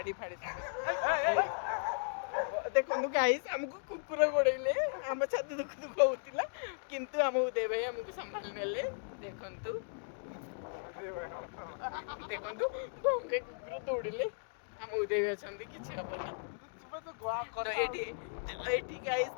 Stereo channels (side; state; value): right; silent; digital silence